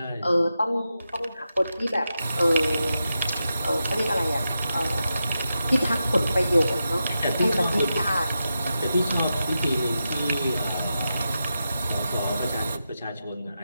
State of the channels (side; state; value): both; inverted; correlation -0.89